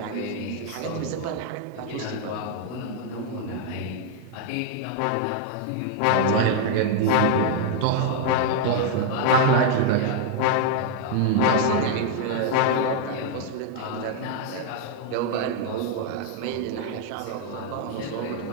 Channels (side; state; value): both; different; correlation 0.00